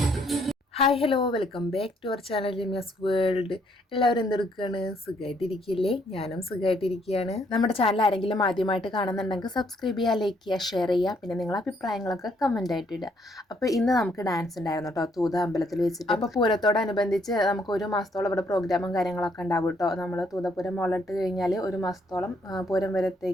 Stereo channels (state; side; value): normal; both; correlation 0.69